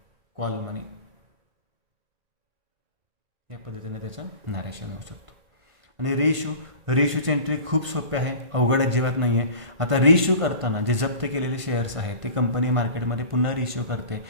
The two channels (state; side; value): late; left; 1.5 ms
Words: कॉल मनी. या पद्धतीने त्याचं नॅरेशन होऊ शकतो. आणि रेशूची एंट्री खूप सोपी आहे, अवघड अजिबात नाही आहे. आता रेशू करताना जे जप्त केलेले शेअर्स आहेत ते कंपनी मार्केटमध्ये पुन्हा रेशू करते